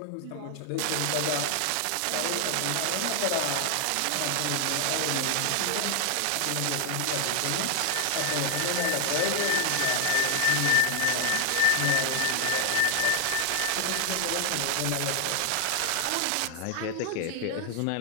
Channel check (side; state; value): both; different; correlation 0.00